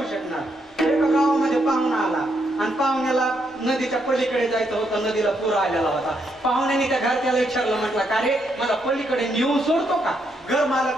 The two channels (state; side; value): normal; both; correlation 0.77